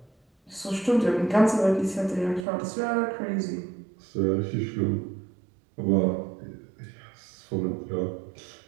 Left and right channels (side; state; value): left; drops out; at 2.5 s